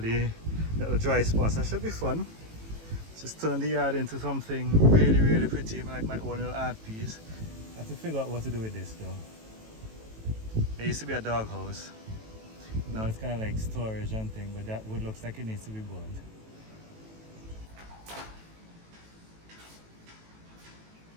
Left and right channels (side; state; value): left; late; 18 ms